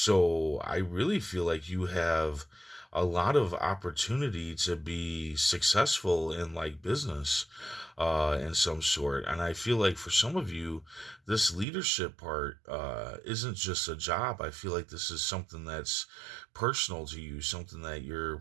I really feel like you have a lot of opportunity to be successful in like business in some sort. And I feel like for some of you, this leadership part isn't just a job. I feel like this is something that's personal to you, something that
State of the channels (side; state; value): left; drops out; at 11.7 s